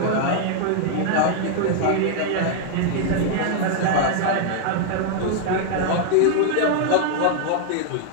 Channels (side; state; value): both; different; correlation 0.00